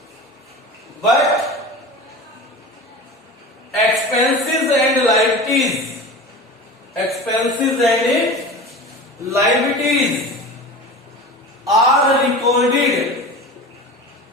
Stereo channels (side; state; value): both; normal; correlation 0.33